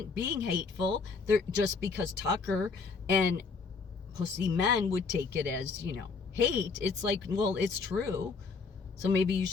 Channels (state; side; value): quieter; right; 4.8 dB